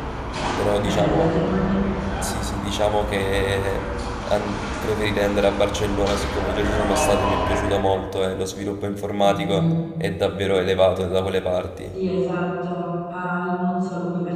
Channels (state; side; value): identical; both; correlation 1.00